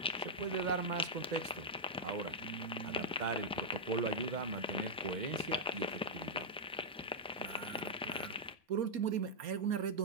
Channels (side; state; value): both; normal; correlation -0.04